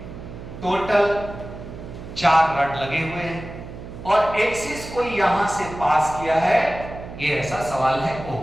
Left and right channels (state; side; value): noise; right; hum, 12 dB below the sound